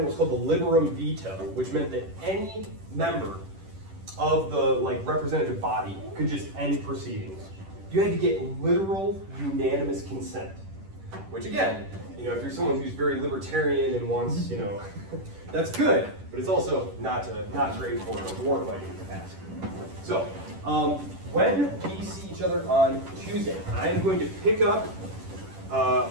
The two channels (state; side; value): late; left; 10 ms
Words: what's called the liberum veto, which meant that any member of the representative body could just end proceedings. You had to get literal unanimous consent, which again, if you're someone who's very libertarian and wants, that's good, but it's also not great for war fighting capacity. So, when we see each other on Tuesday, I am going to pick up